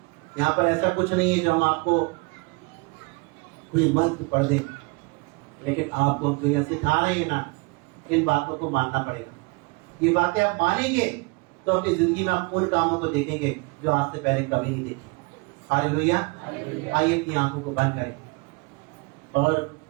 यहाँ पर ऐसा कुछ नहीं है जो हम आपको कोई मंत्र पढ़ दें, लेकिन आपको हम तो यह सिखा रहे हैं ना, इन बातों को मानना पड़ेगा। ये बातें आप मानेंगे तो अपनी जिंदगी में आप उन कामों को देखेंगे जो आज से पहले कभी नहीं देखे। हालेलुया। आइए अपनी आंखों को बंद करें और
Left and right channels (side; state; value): left; quieter; 29.7 dB